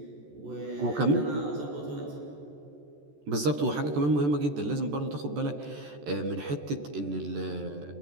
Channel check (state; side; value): late; left; 14 ms